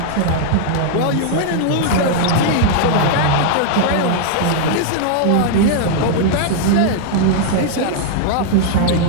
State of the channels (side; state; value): both; different; correlation 0.00